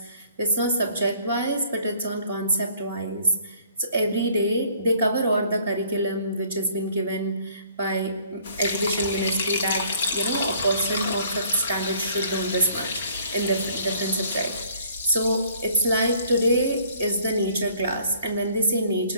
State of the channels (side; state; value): both; inverted; correlation -0.59